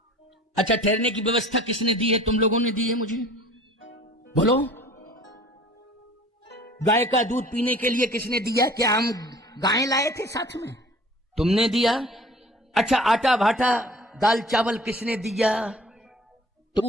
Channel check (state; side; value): normal; both; correlation 0.48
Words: अच्छा ठहरने की व्यवस्था किसने दी है? तुम लोगों ने दी है मुझे, बोलो। गाय का दूध पीने के लिए किसने दिया? क्या हम गाय लाए थे साथ में? तुमने दिया। अच्छा आटा भाटा दाल चावल किसने दिया?